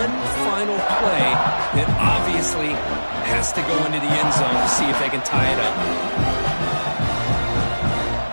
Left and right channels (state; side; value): inverted; both; correlation -1.00